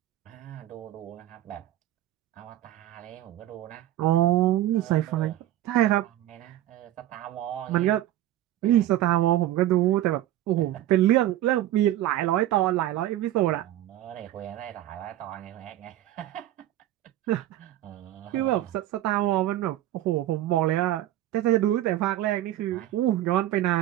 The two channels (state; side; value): quieter; left; 13.6 dB